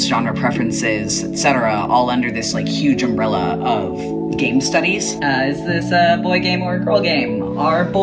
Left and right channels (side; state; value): both; identical; correlation 1.00